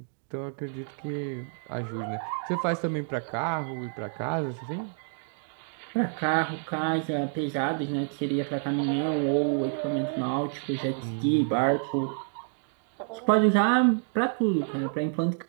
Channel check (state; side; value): silent; left; 59 dB below the other